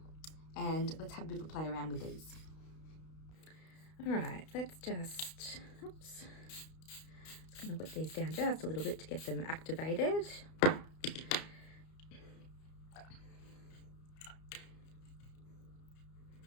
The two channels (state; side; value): late; right; 32 ms